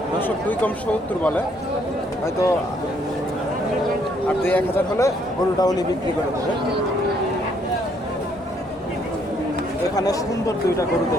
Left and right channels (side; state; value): both; normal; correlation 0.68